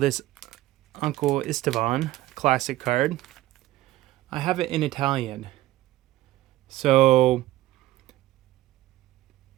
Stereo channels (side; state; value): left; quieter; 16.2 dB